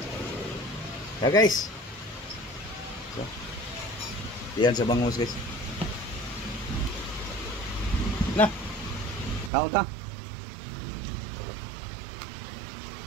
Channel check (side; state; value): left; drops out; at 9.5 s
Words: Guys. So, yan sa bangus guys. Nah. Kaon ta.